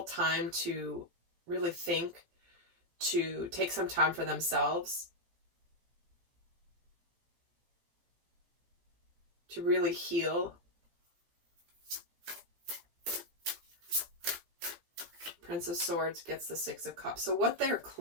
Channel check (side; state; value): left; late; 17 ms